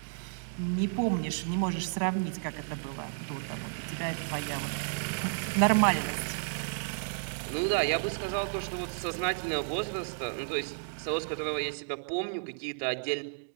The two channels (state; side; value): silent; left; digital silence